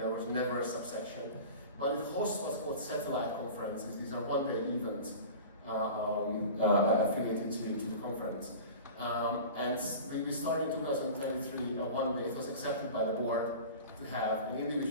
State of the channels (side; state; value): both; inverted; correlation -0.36